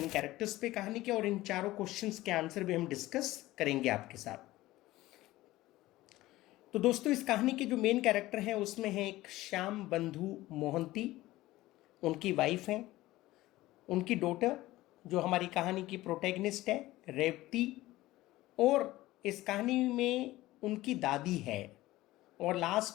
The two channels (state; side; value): quieter; right; 17.3 dB